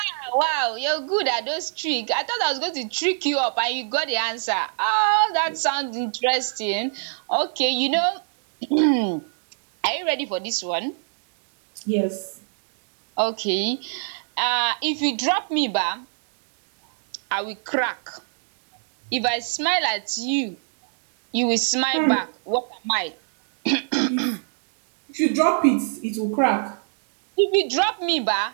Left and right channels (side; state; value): left; silent; digital silence